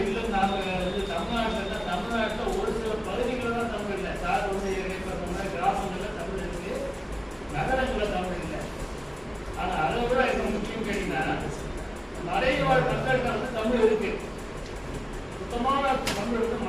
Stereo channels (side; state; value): both; identical; correlation 1.00